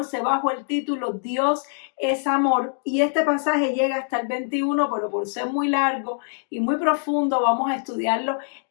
bajo el título Dios es amor, y este pasaje llega hasta el 21, pero por ser muy largo y muy profundo vamos a estudiarlo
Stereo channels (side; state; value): right; silent; digital silence